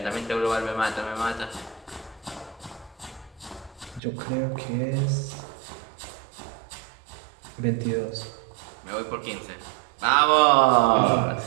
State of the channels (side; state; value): left; drops out; at 4.0 s